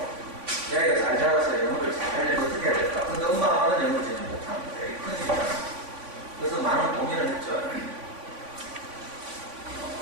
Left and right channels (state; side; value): late; left; 3.5 ms